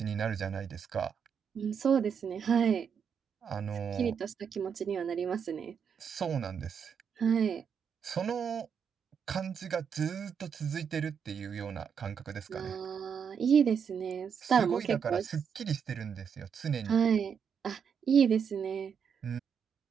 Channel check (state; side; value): quieter; left; 7.1 dB